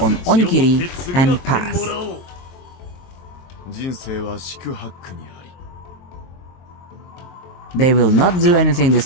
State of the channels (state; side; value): late; right; 23 ms